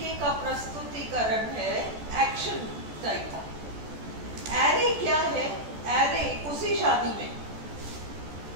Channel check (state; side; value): late; left; 14 ms